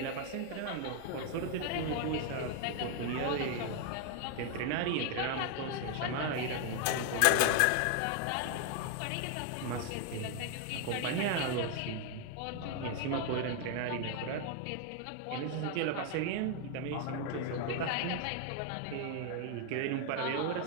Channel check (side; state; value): both; different; correlation 0.00